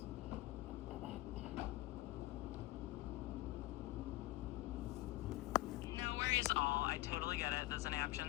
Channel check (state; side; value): quieter; right; 18.5 dB